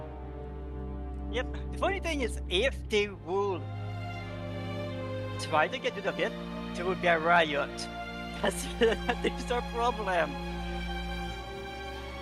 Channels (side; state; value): both; identical; correlation 1.00